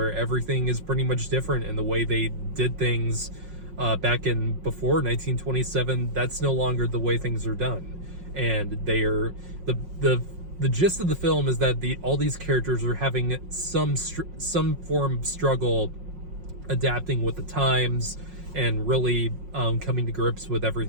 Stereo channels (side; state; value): left; late; 5.5 ms